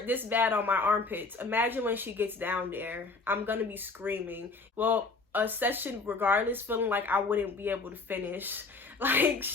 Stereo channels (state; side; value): quieter; right; 3.8 dB